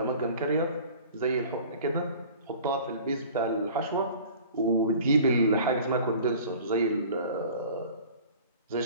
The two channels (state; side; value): inverted; both; correlation -0.45